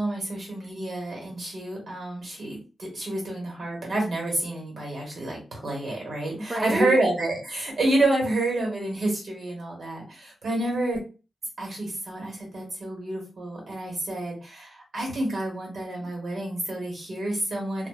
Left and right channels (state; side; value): normal; both; correlation 0.86